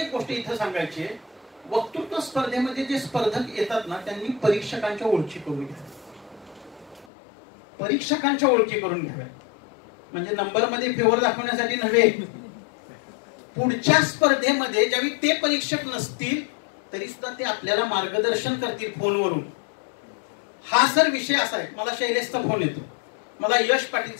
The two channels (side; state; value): right; drops out; at 7.1 s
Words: गोष्ट इथं सांगायची आहे, वक्तृत्व स्पर्धेमध्ये जे स्पर्धक येतात ना त्यांनी परीक्षकांच्या ओळखी करून घ्याव्या, परीक्षकांच्या ओळखी करून घ्याव्या, म्हणजे नंबर मध्ये फेवर दाखवण्यासाठी नव्हे. पुढच्या स्पर्धेमध्ये ज्यावेळी ते परीक्षक नसतील तरी सुद्धा ते आपल्याला मार्गदर्शन करतील फोनवरून. हा सर विषय असा आहे, मला शैलेशचा फोन येतो, मला यश